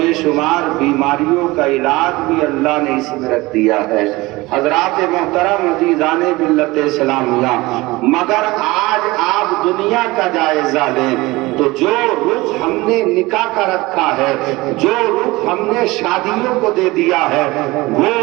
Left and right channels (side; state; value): left; quieter; 21.1 dB